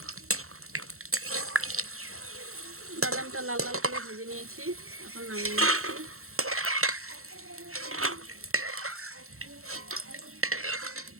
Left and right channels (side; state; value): left; late; 0.63 ms